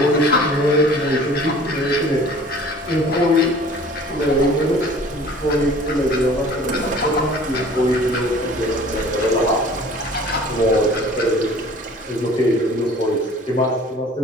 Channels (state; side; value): normal; both; correlation 0.48